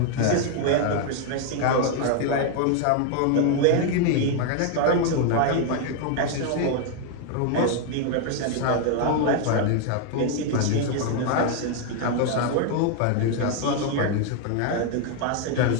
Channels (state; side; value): different; both; correlation 0.00